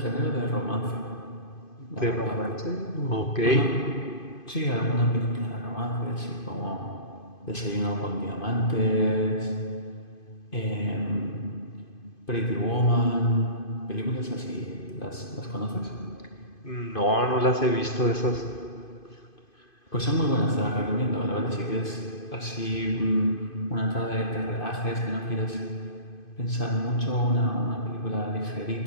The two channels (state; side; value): late; right; 2.5 ms